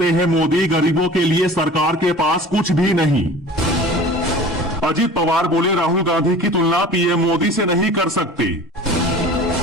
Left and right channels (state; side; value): normal; both; correlation 0.42